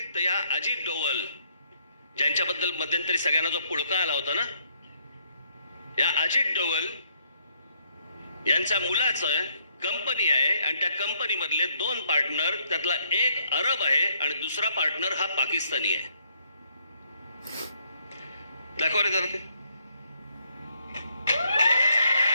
तर या अजित डोवल ज्यांच्याबद्दल मध्यंतरी सगळ्यांना जो पुळका आला होता ना, या अजित डोवल यांच्या मुलाचं कंपनी आहे आणि त्या कंपनी मधले 2 पार्टनर, त्यातला एक अरब आहे आणि दुसरा पार्टनर हा पाकिस्तानी आहे. दाखवा रे जरा ते.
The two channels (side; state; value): both; inverted; correlation -0.70